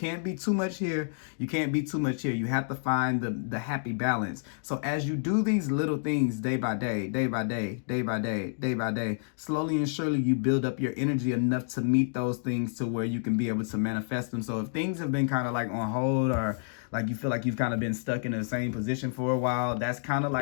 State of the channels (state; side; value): silent; right; digital silence